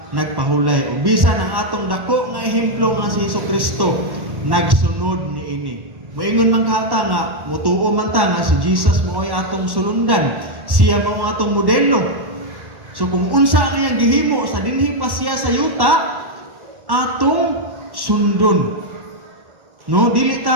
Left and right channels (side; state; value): left; late; 1.1 ms